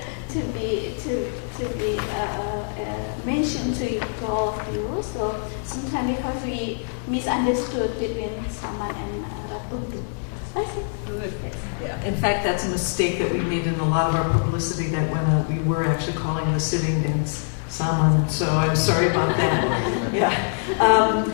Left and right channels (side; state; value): right; silent; digital silence